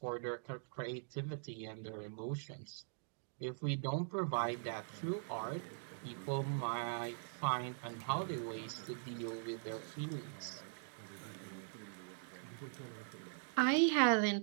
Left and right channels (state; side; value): silent; left; digital silence